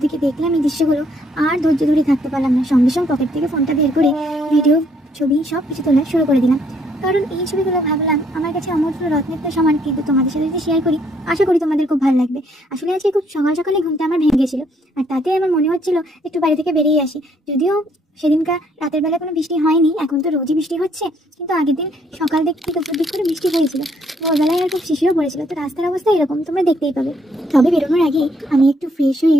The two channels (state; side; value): normal; both; correlation 0.68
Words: থেকে দেখলাম এই দৃশ্যগুলো, আর ধৈর্য ধরে থাকতে পারলাম না। সঙ্গে সঙ্গে পকেট থেকে ফোনটা বের করে ভিডিও, ছবি সব কিছু তোলা শুরু করে দিলাম। কারণ এই ছবিগুলো ভাবলাম আমার কাছে অমূল্য রত্নের তো সমান, কিন্তু তোমাদের সাথে যদি শেয়ার করি আশা করি তোমাদের খুব ভালো লাগবে। আসলে আজকে খুব সকাল সকালে ঘুমটা আমার ভেঙে গেছিল, আর তাতে আমার মনে হচ্ছিল একটু বাড়ি থেকে বেরিয়ে আসি। যদিও সেদিনকার রাতের বেলা কোনো বৃষ্টি হয়নি, এখন তো রোজই বৃষ্টি হচ্ছে, কিন্তু আগের দিন সকাল দিক থেকে দুপুর দিক করে বৃষ্টি হয়েছিল। ভোরবেলায় আর খুব শিশিরও পড়েছিল। তো রাস্তার অবস্থা এরকম তোমরা দেখতেই পাবে। তবে বেরোনোর আগে আমি একটু ফ্রেশ হয়ে